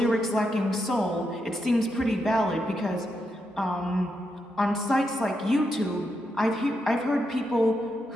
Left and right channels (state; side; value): normal; both; correlation 0.83